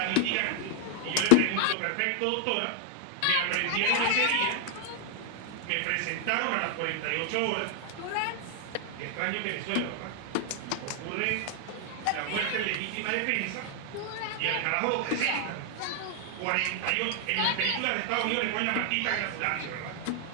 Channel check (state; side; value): different; both; correlation 0.00